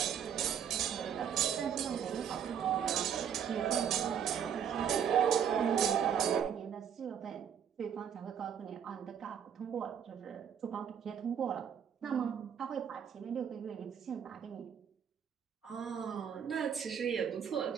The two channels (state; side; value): quieter; left; 8.3 dB